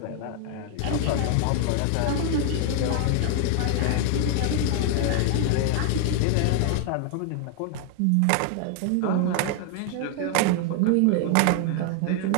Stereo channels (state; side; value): different; both; correlation 0.00